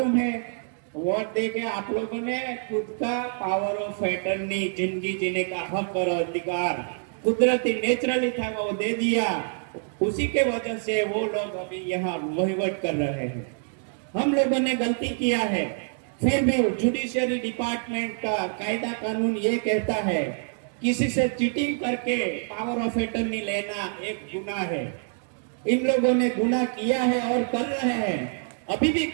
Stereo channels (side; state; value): left; silent; 61 dB below the other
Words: है? वोट देके आप लोगों ने खुद का पावर ऑफ अटर्नी, जिंदगी जीने का हक और अधिकार कुदरती नेचुरली था वो दे दिया। उसी के वजह से वो लोग अभी यहाँ वहीवट कर रहे हैं। हम लोगों ने गलती किया है, फिर भी जुडिशियरी डिपार्टमेंट का कायदा कानून ये कहता है किसी से चीटिंग करके पावर ऑफ अटर्नी लेना एक गुनाह है। इन लोगों ने गुनाह किया है और कर रहे हैं, अभी भी